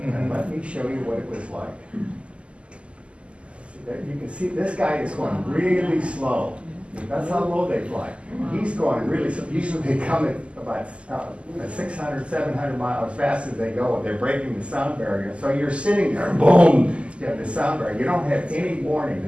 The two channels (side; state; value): left; late; 0.055 ms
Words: let me show you what it was like. You can see this guy is going really slow. That's how low they fly. He's going really slow. Usually they come at about 600, 700 miles as fast as they go. They're breaking the sound barrier. So you're sitting there, boom, you have the sound barrier. You don't have any warning.